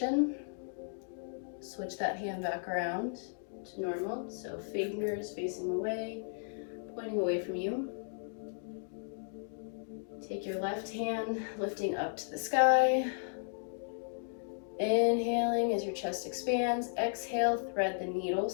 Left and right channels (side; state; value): right; silent; digital silence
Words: Switch that hand back around to normal. So fingers facing away, pointing away from you. Take your left hand, lifting up to the sky. Inhaling as your chest expands. Exhale, thread the needle,